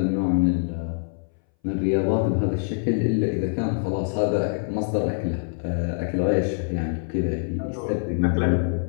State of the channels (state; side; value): silent; right; 61 dB below the other